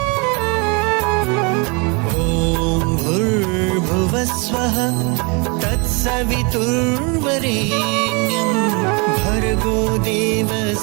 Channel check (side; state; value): left; quieter; 31.3 dB